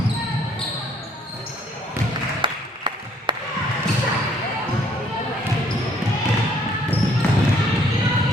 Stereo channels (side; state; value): both; normal; correlation 0.63